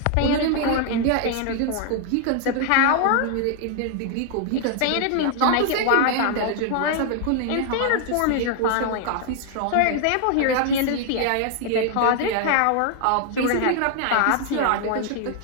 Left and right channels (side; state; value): both; different; correlation 0.00